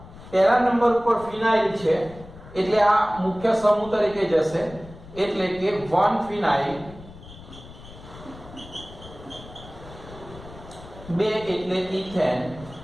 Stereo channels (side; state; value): left; noise; rumble, 17 dB below the sound